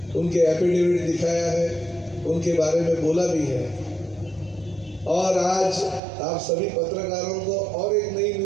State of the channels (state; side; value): drops out; left; at 6.0 s